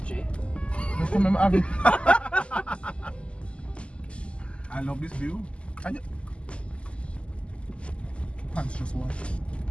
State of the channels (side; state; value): right; late; 0.055 ms